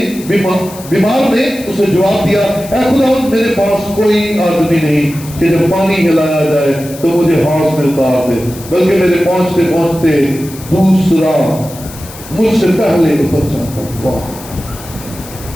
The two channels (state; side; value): noise; left; hiss, 16 dB below the sound